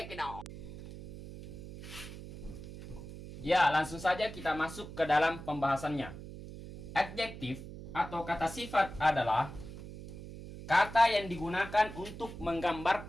it out! Ya, langsung saja kita masuk ke dalam pembahasannya. Adjektif atau kata sifat adalah kata yang digunakan untuk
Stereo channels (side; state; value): right; noise; hum, 12 dB below the sound